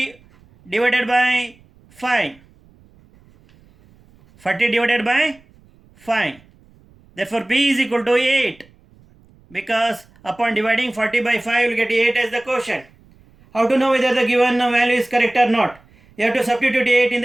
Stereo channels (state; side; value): noise; right; rumble, 29 dB below the sound